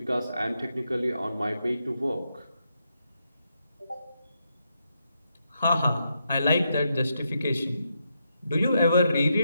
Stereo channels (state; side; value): inverted; both; correlation -0.82